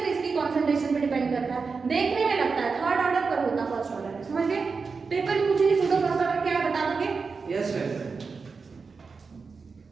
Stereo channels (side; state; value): left; quieter; 4.8 dB